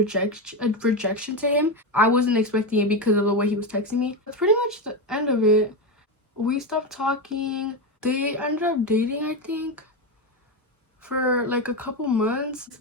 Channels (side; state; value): both; normal; correlation 0.13